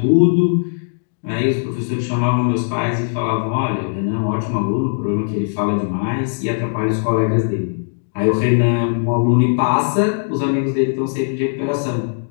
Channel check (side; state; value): right; silent; digital silence